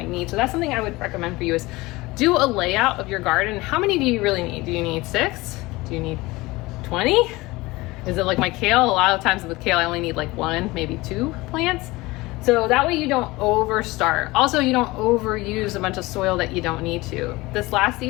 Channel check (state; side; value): quieter; right; 21.2 dB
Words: need. So that's something I would recommend for you is do a layout of your garden. How many do you really need? Do you need 6? Do you need 20? Is it like my kale? A lot of times with kale I only need like 1, maybe 2 plants. So that way you don't overstart. Also, you don't overuse a bunch of soil that you don't need to. This last